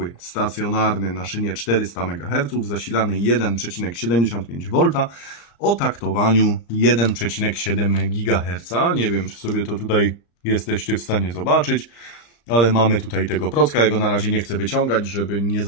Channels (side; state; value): right; late; 35 ms